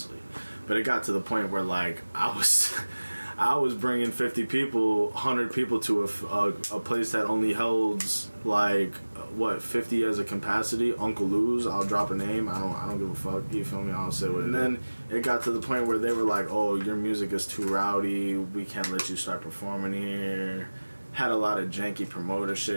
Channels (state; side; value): inverted; both; correlation -1.00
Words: But it got to the point where, like, I was bringing 50 people, 100 people to a place that only holds, like, 50 as a capacity. Uncle Lou's, I'll drop a name. I don't give a fuck. You feel me? I'll say what it is. And then it got to the point where they were like, "Oh, your music is too rowdy. We can't let you start performing here." had a lot of janky promoter